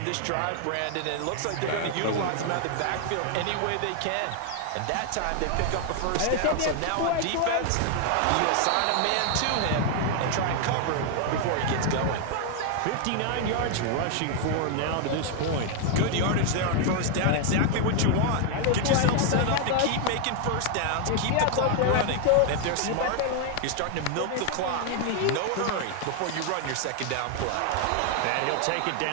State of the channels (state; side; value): different; both; correlation 0.00